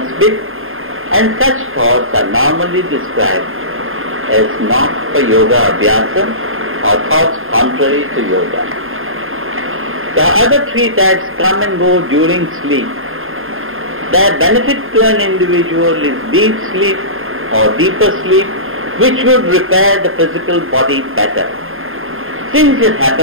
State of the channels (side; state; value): left; late; 0.60 ms